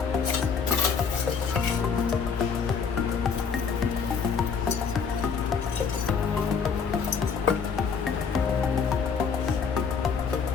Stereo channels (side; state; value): right; quieter; 5.9 dB